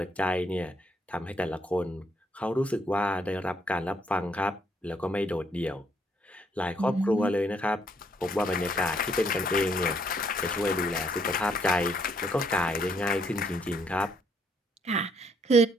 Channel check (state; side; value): normal; both; correlation 0.70